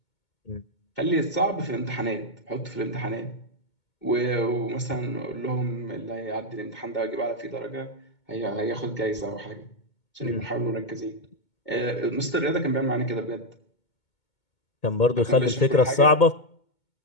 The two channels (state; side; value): late; right; 2.2 ms